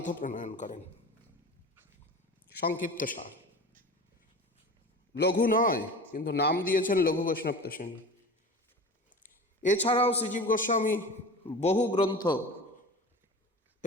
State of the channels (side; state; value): both; normal; correlation 0.34